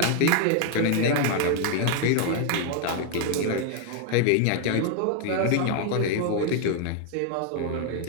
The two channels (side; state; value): both; different; correlation 0.00